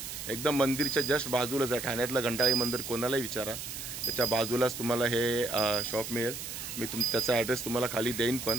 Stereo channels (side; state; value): right; noise; hiss, 8 dB below the sound